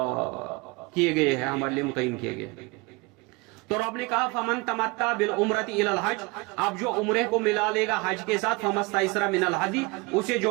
کیے گئے ہیں، ہمارے لیے متعین کیے گئے۔ تو رب نے کہا فمن تمتع بالعمرۃ الی الحج، اب جو عمرے کو ملا لے گا حج کے ساتھ، فمستیسر من الہدی، اسے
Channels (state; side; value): quieter; left; 25.9 dB